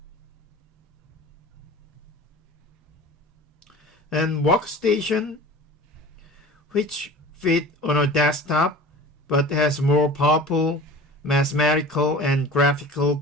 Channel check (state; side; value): normal; both; correlation 0.39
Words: And workstation, which fit on a desktop but has more powerful mathematical and graphical